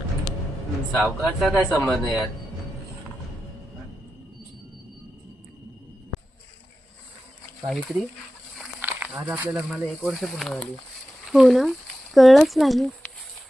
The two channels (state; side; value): normal; both; correlation 0.92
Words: सावकारचा काय संबंध आहे यात? सावित्री, आज आपल्या लग्नाला 1 वर्ष पूर्ण झाली. हो ना, कळलंच नाही.